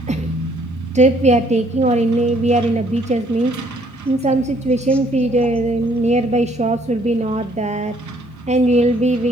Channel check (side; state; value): both; normal; correlation 0.64